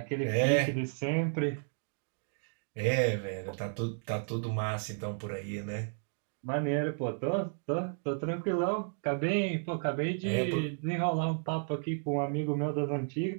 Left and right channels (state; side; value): silent; left; digital silence